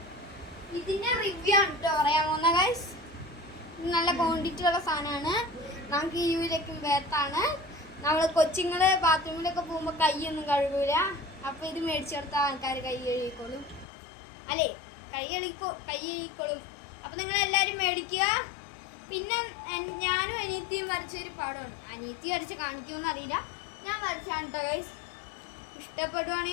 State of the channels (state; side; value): drops out; right; at 13.9 s